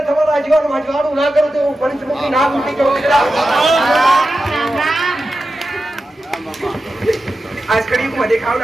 તમારા આજવાળું ના કરું તો હું પંચમુખી નાગ મૂકી જાઉં દીકરા. રામ રામ આજ કળિયુગમાં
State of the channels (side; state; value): both; normal; correlation 0.92